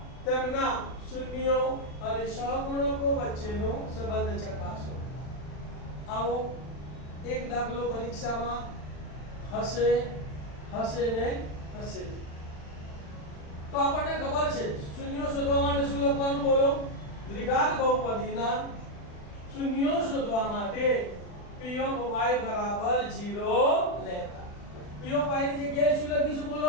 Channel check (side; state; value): right; late; 40 ms